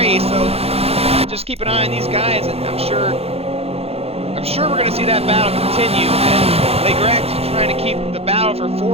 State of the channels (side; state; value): left; late; 0.29 ms